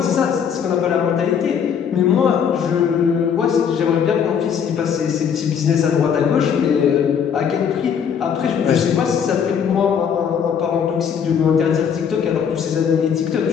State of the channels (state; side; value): quieter; right; 7.6 dB